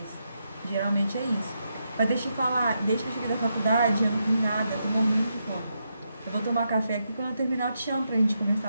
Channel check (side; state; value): both; inverted; correlation -0.83